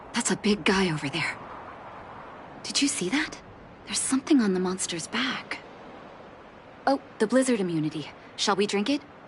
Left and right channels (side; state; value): both; identical; correlation 1.00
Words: That's a big guy over there. Did you see that? There's something on the monster's back. Oh, the blizzard immunity. Shall we drink it?